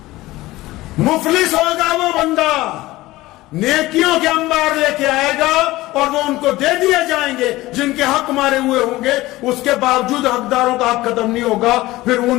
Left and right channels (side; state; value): right; quieter; 18.3 dB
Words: مفلس ہوگا وہ بندہ، نیکیوں کے انبار لے کے آئے گا اور وہ ان کو دے دیے جائیں گے جن کے حق مارے ہوئے ہوں گے، اس کے باوجود حقداروں کا حق ختم نہیں ہوگا، پھر